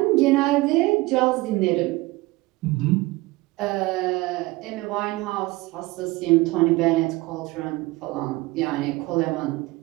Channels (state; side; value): quieter; left; 21.2 dB